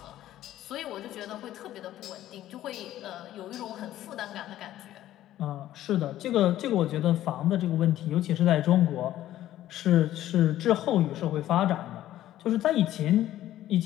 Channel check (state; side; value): quieter; right; 13.4 dB